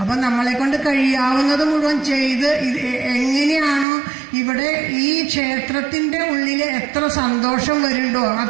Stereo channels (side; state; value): left; drops out; at 3.9 s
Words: അപ്പം നമ്മളെ കൊണ്ട് കഴിയാവുന്നത് മുഴുവൻ ചെയ്ത് എങ്ങനെയാണോ ഇവിടെ ഈ ക്ഷേത്രത്തിന്റെ ഉള്ളിൽ എത്ര സന്തോഷം വരുന്നുണ്ടോ